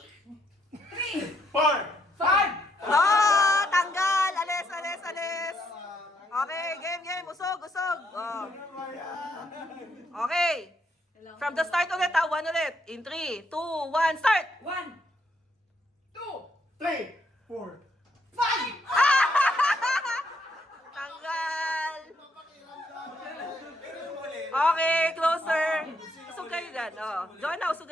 3, 4! 5. Oh, tanggal! Alis, alis, alis! Okay, game, game. Usog, usog. Oh. Okay. From the start ulit, ha? 1 ulit. In 3, 2, 1, start! 1, 2, 3! 4! 5. Tanggal! Okay, closer. Usog kayo dyan. Oh. Joanna, usog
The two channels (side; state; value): both; normal; correlation 0.74